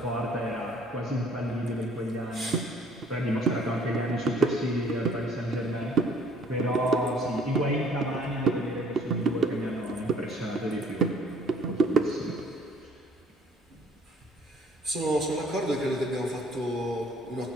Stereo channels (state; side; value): normal; both; correlation 0.59